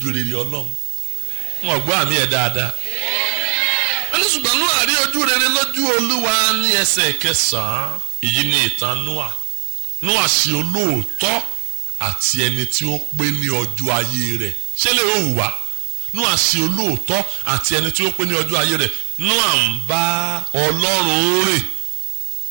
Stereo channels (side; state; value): left; silent; 67 dB below the other